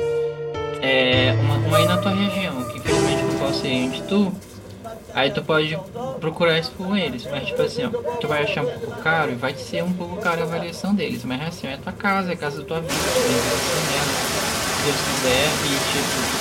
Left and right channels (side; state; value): both; identical; correlation 1.00